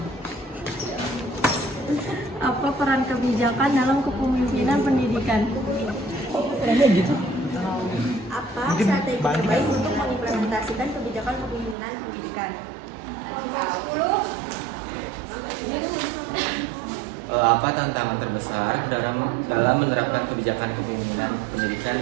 Apa peran kebijakan dalam kepemimpinan pendidikan? Apa strategi terbaik untuk mengimplementasikan kebijakan kepemimpinan pendidikan? Kelompok 10. Apa tantangan terbesar dalam menerapkan kebijakan kepemimpinan pendidikan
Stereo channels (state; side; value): drops out; left; at 11.8 s